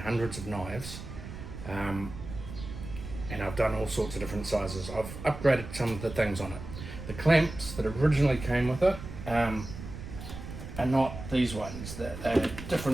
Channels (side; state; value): right; noise; rumble, 10 dB below the sound